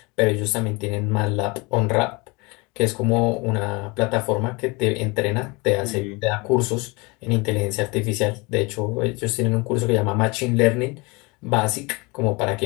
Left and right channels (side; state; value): right; quieter; 26.8 dB